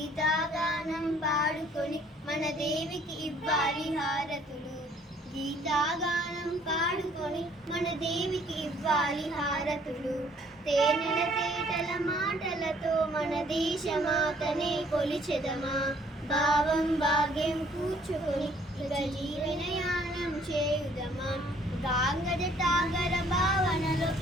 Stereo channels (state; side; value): normal; both; correlation 0.60